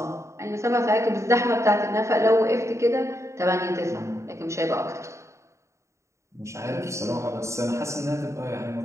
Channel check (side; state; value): left; late; 0.14 ms